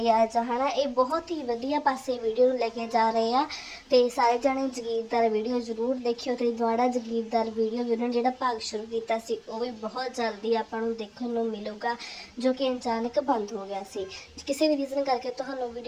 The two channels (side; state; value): both; identical; correlation 1.00